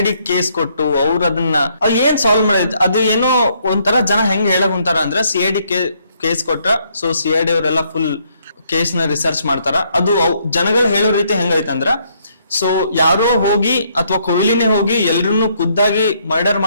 ಕೇಸ್ ಕೊಟ್ಟು ಅವ್ರು ಅದನ್ನ ಏನ್ ಸಾಲ್ವ್ ಮಾಡಿದ್ ಅದು ಏನೋ ಒಂಥರ ಜನ ಹೆಂಗ್ ಹೇಳಕ್ ಕುಂತಾರ ಅಂದ್ರೆ CID ಕೇಸ್ ಕೊಟ್ರ ಸೊ CID ಅವರೆಲ್ಲ ಫುಲ್ ಕೇಸ್ ನ ರಿಸರ್ಚ್ ಮಾಡ್ತಾರ. ಅದು ಜನಗಳು ಹೇಳೋ ರೀತಿ ಹೆಂಗೈತಂದ್ರ ಸೊ ಯಾರೋ ಹೋಗಿ ಅಥವಾ ಕೊಹ್ಲಿನೇ ಹೋಗಿ ಎಲ್ರನ್ನೂ ಖುದ್ದಾಗಿ ಮರ್ಡರ್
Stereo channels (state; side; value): inverted; both; correlation -0.71